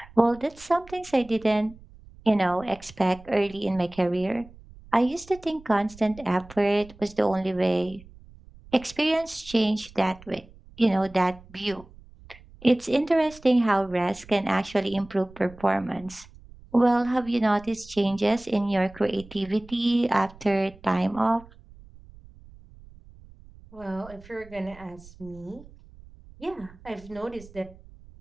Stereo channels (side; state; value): right; noise; rumble, 22 dB below the sound